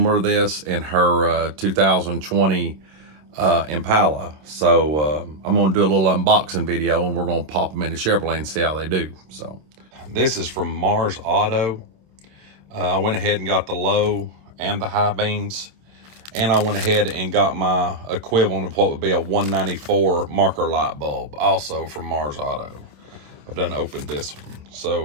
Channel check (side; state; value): left; late; 26 ms